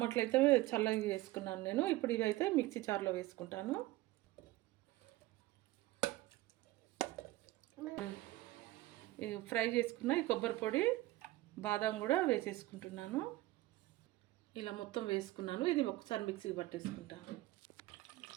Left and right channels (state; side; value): quieter; left; 17.7 dB